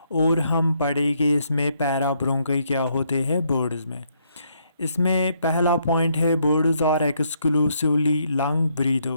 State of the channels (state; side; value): inverted; both; correlation -0.73